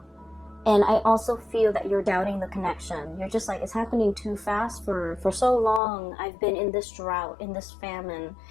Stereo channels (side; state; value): right; drops out; at 5.8 s